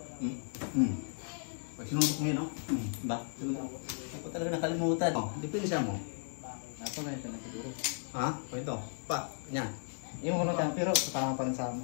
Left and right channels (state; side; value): silent; right; digital silence